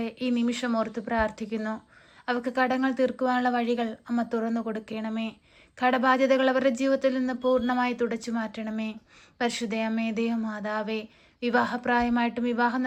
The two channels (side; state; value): both; identical; correlation 1.00